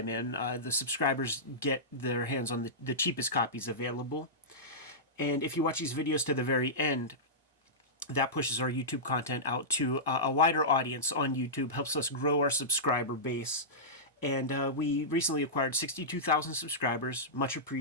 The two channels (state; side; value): normal; both; correlation -0.15